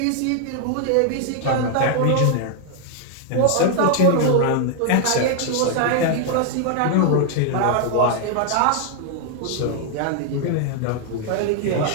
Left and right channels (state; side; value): different; both; correlation 0.00